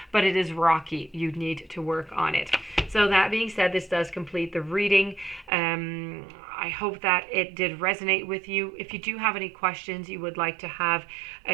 but it is rocky. You need to work on it. So that being said, this does complete the reading. I hope that it did resonate with you. If you do have any questions, you would like to have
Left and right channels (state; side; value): drops out; left; at 5.5 s